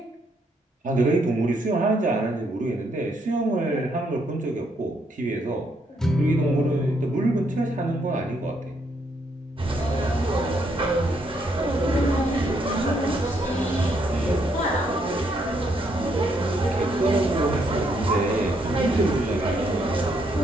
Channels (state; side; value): normal; both; correlation 0.73